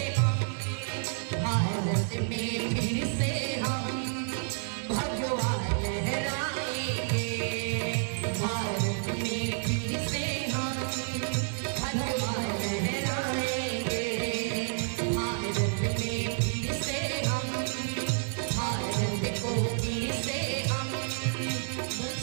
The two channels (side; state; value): left; silent; digital silence